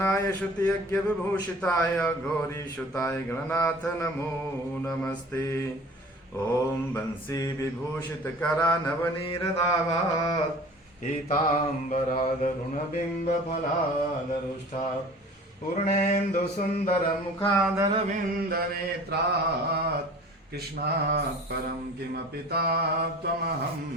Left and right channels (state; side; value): normal; both; correlation 0.44